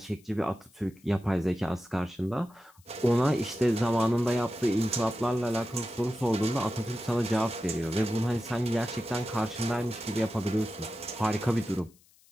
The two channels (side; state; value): left; noise; hiss, 30 dB below the sound